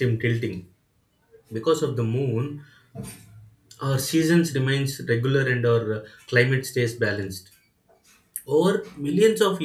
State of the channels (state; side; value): identical; both; correlation 1.00